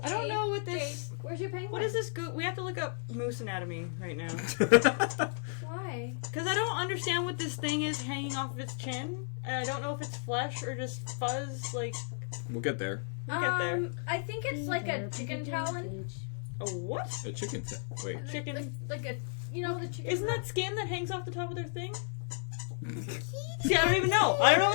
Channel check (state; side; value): silent; right; digital silence